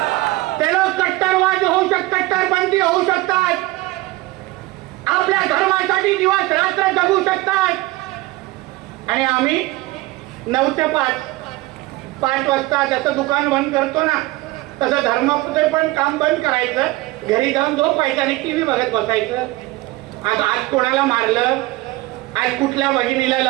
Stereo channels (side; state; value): left; quieter; 19.9 dB